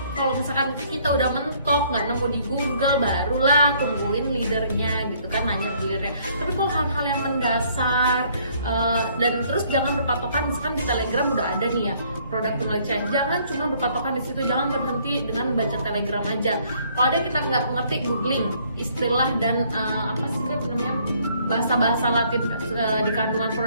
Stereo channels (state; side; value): inverted; both; correlation -0.63